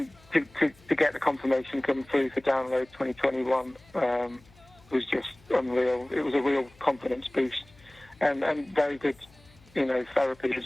to get the confirmation come through for Download 2021 was just unreal. It was a real confidence boost, and very good, therapy as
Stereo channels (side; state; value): left; noise; hum, 27 dB below the sound